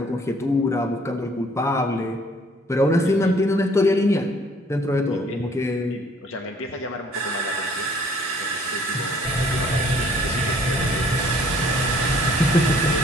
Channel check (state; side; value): normal; both; correlation 0.58